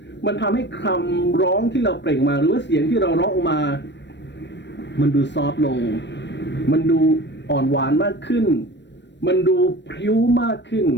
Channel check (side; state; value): right; late; 0.52 ms